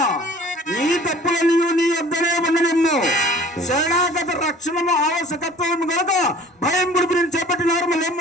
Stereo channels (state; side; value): normal; both; correlation 0.48